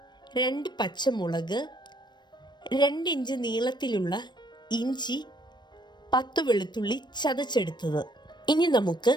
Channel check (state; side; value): late; right; 0.22 ms